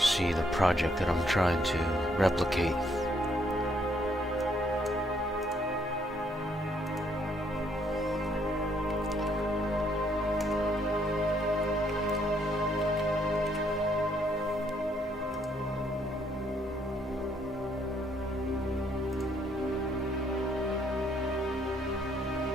the project that I'm trying to replicate.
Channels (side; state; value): both; normal; correlation 0.70